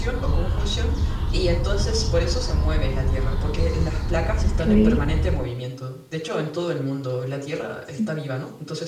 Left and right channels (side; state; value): both; identical; correlation 1.00